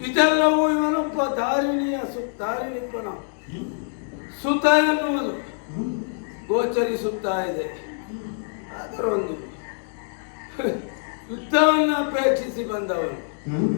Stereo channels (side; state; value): right; silent; digital silence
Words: ಇದೆಲ್ಲವೂ ಇವನೊಬ್ಬ ಧಾರಿಣಿಪನ ಸುತ ಎನ್ನುವುದು ಗೋಚರಿಸುತ್ತಾ ಇದೆ. ಅದರೊಂದು ಯುದ್ಧವನ್ನು ಅಪೇಕ್ಷಿಸಿ ಬಂದವನು